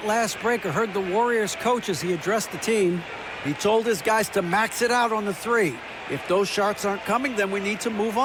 last break, I heard the Warriors coach as he addressed the team. He told his guys to max it out on the 3. If those shots aren't coming, then we need to move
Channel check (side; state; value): both; identical; correlation 1.00